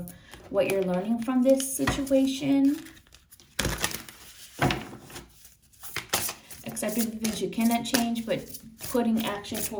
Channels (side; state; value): both; identical; correlation 1.00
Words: what you're learning from this situation. Accepting the things you cannot change, but putting action